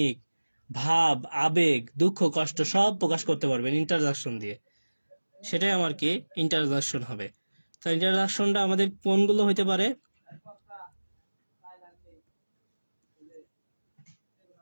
ভাব, আবেগ, দুঃখ, কষ্ট সব প্রকাশ করতে পারবেন ইন্টারজাকশন দিয়ে, সেটাই আমার কি? ইন্টারজাকশন হবে। তো ইন্টারজাকশনটা আমাদের কোনগুলো হইতে পারে?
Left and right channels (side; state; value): both; inverted; correlation -1.00